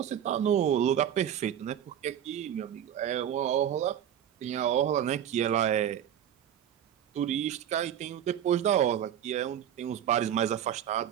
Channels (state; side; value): quieter; left; 10.0 dB